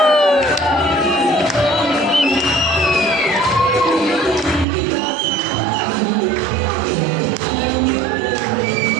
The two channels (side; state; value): left; drops out; at 4.7 s